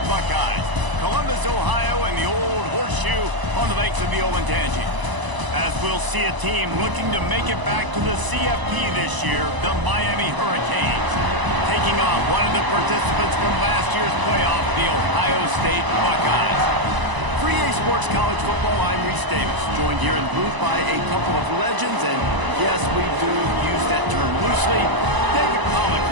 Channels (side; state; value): left; late; 1.0 ms